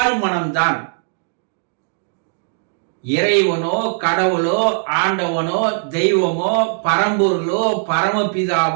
இறைவனோ, கடவுளோ, ஆண்டவனோ, தெய்வமோ, பரம்பொருளோ,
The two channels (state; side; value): silent; left; digital silence